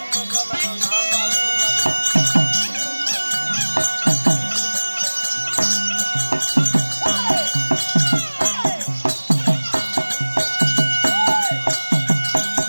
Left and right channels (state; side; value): inverted; both; correlation -1.00